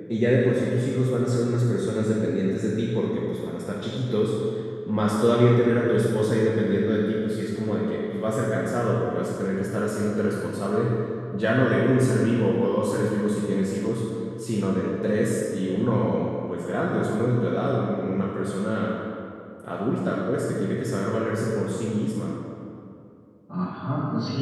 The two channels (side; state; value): both; identical; correlation 1.00